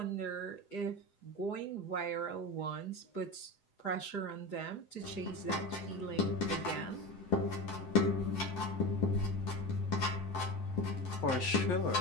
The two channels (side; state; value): right; late; 7.8 ms